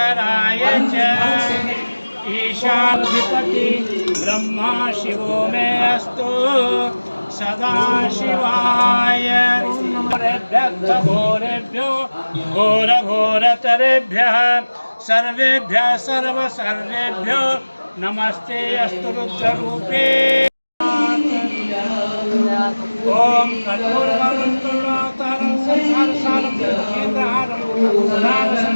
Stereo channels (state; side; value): inverted; both; correlation -1.00